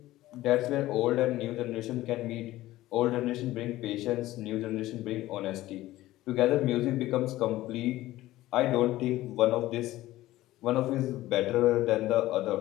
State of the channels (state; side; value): quieter; right; 16.2 dB